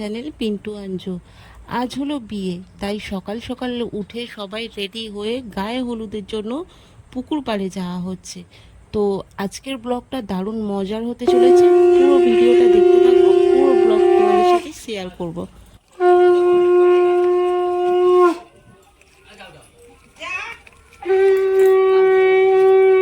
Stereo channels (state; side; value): identical; both; correlation 1.00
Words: Pintu Anju. আজ হলো বিয়ে, তাই সকাল সকাল উঠে সবাই রেডি হয়ে গায়ে হলুদের জন্য পুকুর পাড়ে যাওয়া হচ্ছে। তো আজকের ব্লগটা দারুণ মজার হতে চলেছে। পুরো ভিডিওটা দেখতে থাকো, পুরো ব্লগ তোমাদের সাথে শেয়ার করব।